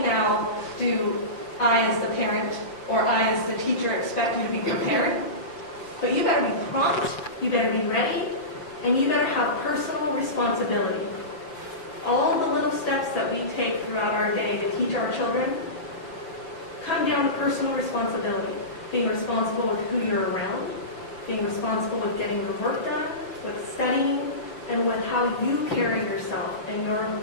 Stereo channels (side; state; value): right; late; 6.2 ms